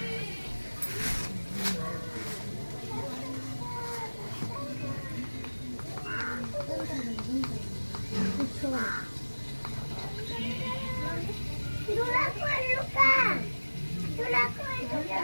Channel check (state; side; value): inverted; both; correlation -1.00